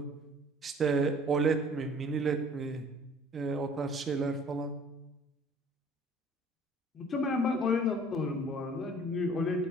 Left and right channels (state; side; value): normal; both; correlation 0.53